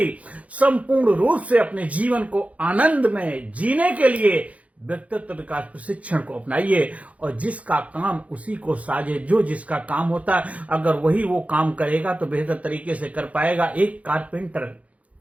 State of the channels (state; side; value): late; left; 0.066 ms